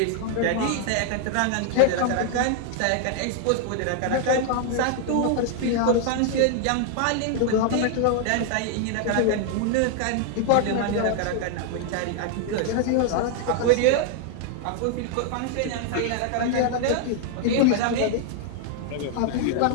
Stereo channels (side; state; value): both; different; correlation 0.00